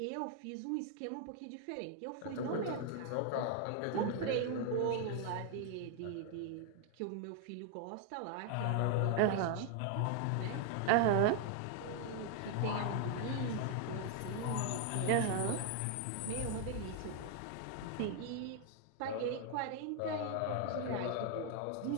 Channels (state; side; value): different; both; correlation 0.00